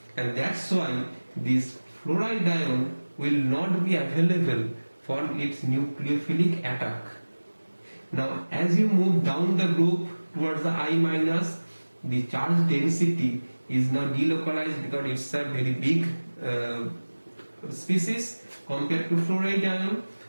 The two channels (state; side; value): inverted; both; correlation -1.00